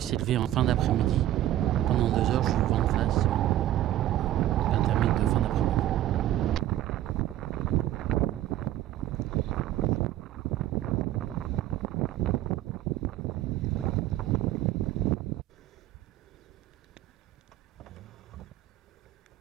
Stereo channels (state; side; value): quieter; left; 13.4 dB